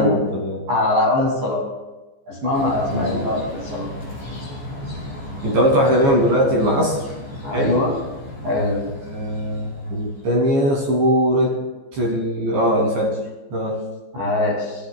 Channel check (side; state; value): left; late; 15 ms